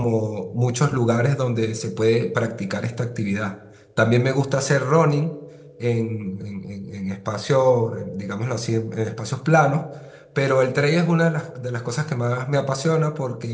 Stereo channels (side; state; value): both; identical; correlation 1.00